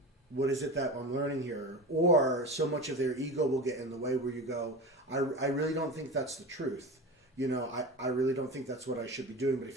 what is it that I'm learning here? Or so much of their ego will get in the way where you go, I really don't think that's the truth. I really don't think that's what I should be doing, but I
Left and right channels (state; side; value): normal; both; correlation 0.28